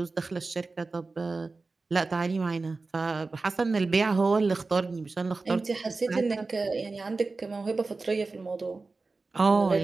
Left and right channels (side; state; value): left; quieter; 3.8 dB